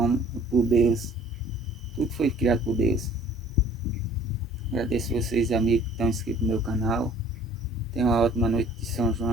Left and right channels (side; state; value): both; normal; correlation 0.53